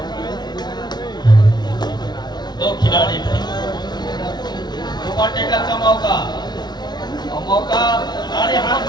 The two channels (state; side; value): late; right; 0.20 ms